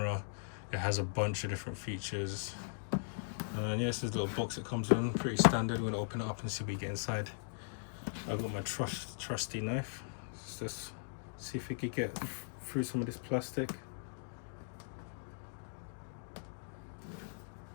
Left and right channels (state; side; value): silent; right; digital silence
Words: It has a bunch of different features. And yeah, this is a little box it comes in, pretty standard. We're going to open it up and see what we get inside. I got my trusty knife. Let's just see if we could get through some of this plastic.